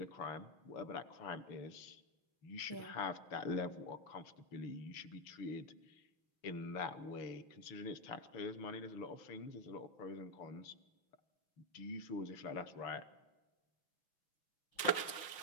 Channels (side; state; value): right; late; 6.3 ms